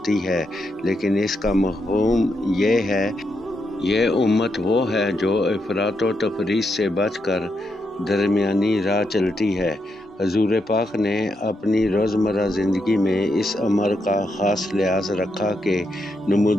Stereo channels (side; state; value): both; normal; correlation 0.82